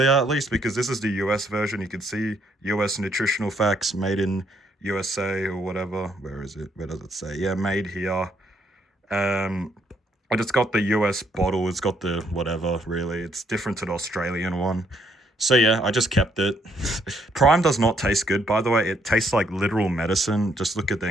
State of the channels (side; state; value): both; normal; correlation 0.71